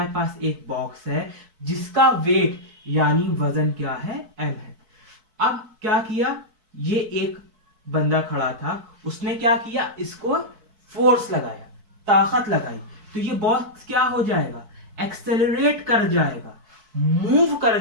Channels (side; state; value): left; late; 4.6 ms